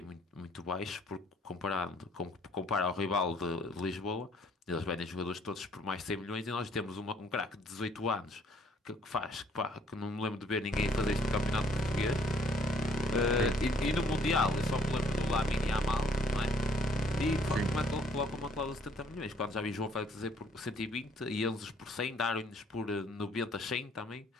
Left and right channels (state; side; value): normal; both; correlation 0.62